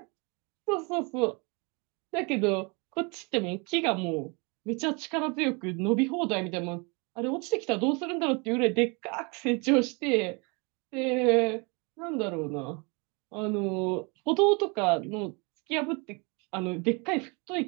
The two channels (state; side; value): quieter; left; 30.8 dB